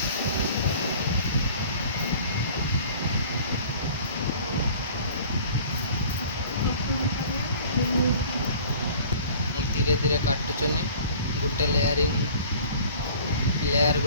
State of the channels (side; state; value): both; inverted; correlation -0.47